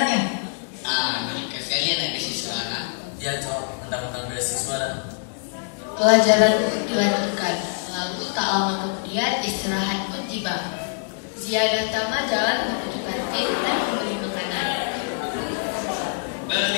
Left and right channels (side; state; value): right; silent; 62 dB below the other